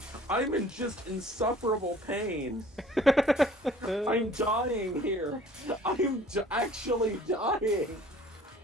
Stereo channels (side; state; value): both; normal; correlation 0.51